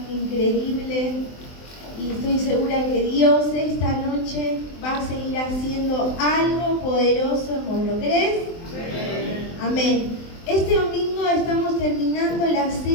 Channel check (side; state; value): right; late; 23 ms